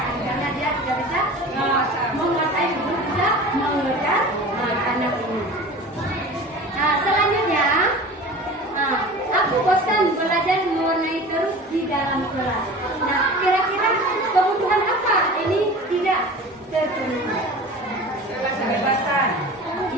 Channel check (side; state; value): both; normal; correlation 0.38